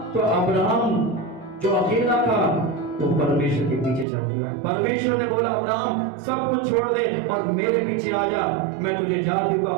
तो अब्राहम जो अकेला था वो परमेश्वर के पीछे चल दिया। परमेश्वर ने बोला अब्राहम सब कुछ छोड़ दे और मेरे पीछे आ जा, मैं तुझे जातियों का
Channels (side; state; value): left; drops out; at 4.0 s